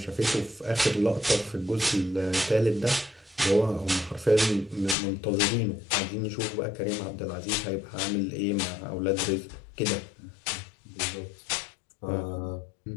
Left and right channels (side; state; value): right; drops out; at 5.0 s